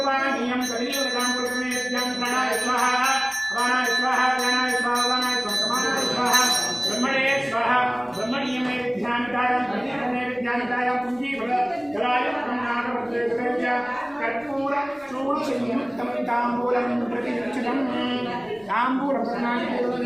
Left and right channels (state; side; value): noise; left; rumble, 29 dB below the sound